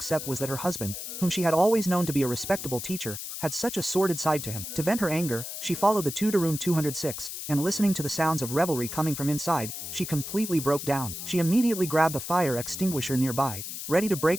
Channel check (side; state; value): left; noise; hiss, 7 dB below the sound